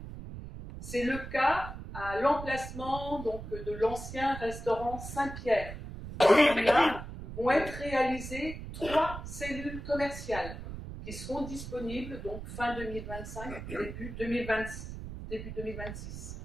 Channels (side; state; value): right; noise; rumble, 9 dB below the sound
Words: C'est le cas à l'emplacement donc, de l'ancien restaurant Saint-Pierre. Là vont être réalisées 3 cellules commerciales qui seront disponibles donc fin 2025, début 2026.